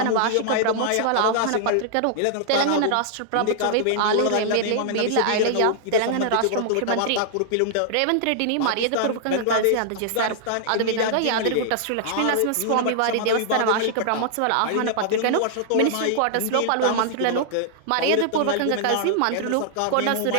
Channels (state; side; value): different; both; correlation -0.01